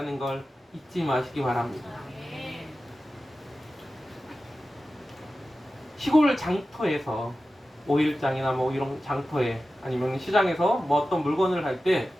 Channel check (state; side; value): normal; both; correlation 0.94